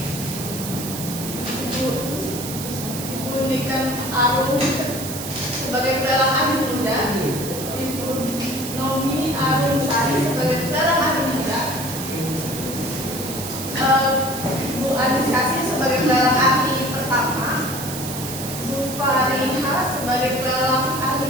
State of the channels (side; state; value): right; noise; hiss, 8 dB below the sound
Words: Ibu Niken Arum sebagai pelelang ahli muda, Ibu Nomi Arum Sari sebagai pelelang ahli muda, Bu Anis Kasih sebagai pelelang ahli pertama, Bu Fariha sebagai pelelang